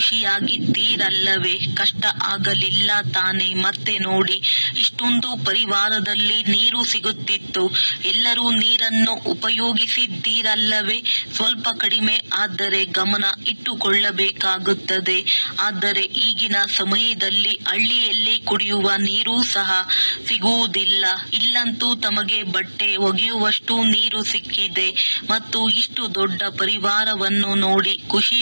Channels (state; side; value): inverted; both; correlation -1.00